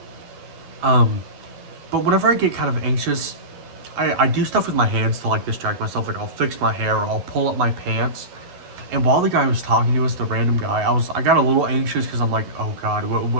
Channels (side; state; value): left; late; 11 ms